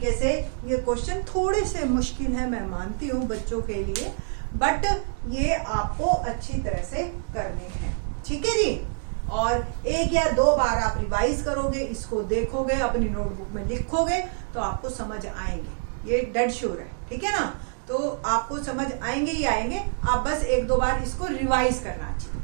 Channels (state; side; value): silent; left; digital silence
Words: से ये क्वेश्चन थोड़े से मुश्किल है, मैं मानती हूँ बच्चों के लिए, बट ये आपको अच्छी तरह से करने हैं। ठीक है जी। और एक या दो बार आप रिवाइज करोगे, इसको देखोगे, अपनी नोटबुक में लिखोगे तो आपको समझ आएंगे, ये डेड श्योर है। ठीक है ना। तो आपको समझ आएंगे ही आएंगे, आप बस एक दो बार इसको रिवाइज करना चाहिए।